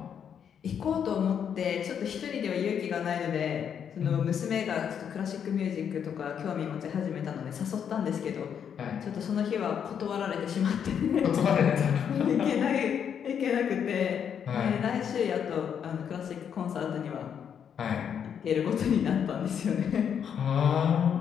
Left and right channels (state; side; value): quieter; right; 8.1 dB